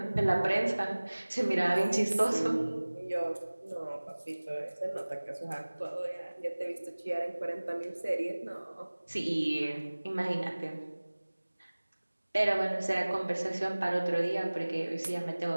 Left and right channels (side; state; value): both; inverted; correlation -1.00